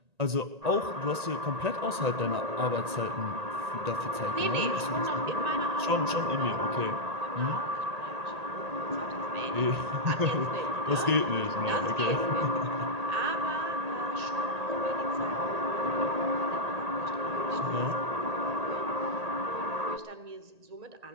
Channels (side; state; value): left; late; 1.8 ms